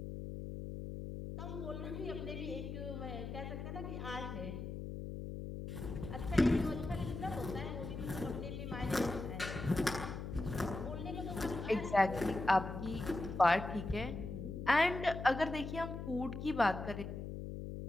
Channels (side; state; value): left; noise; hum, 6 dB below the sound